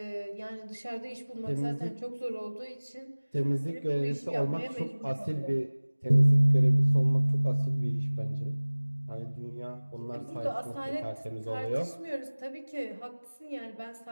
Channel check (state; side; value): inverted; both; correlation -1.00